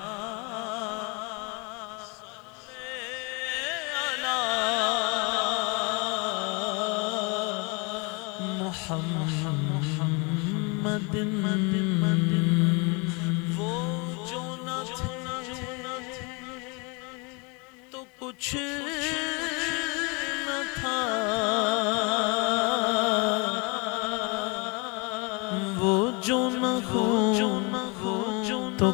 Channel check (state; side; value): quieter; right; 30.9 dB